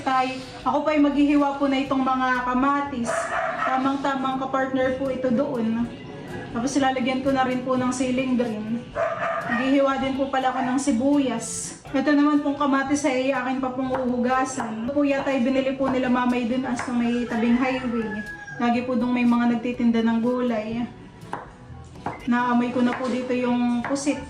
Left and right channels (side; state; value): both; identical; correlation 1.00